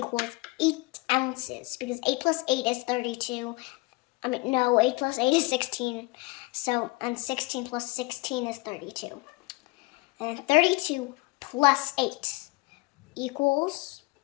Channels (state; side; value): quieter; right; 24.7 dB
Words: 8 ounces. Because 8 plus 8 is 32. No, 8 plus 8 is 16. So, and 16 plus 16 is 32. And 32 plus 8 equals